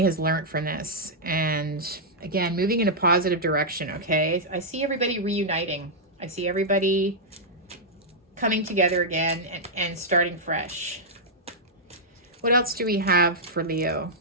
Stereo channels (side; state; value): both; normal; correlation -0.08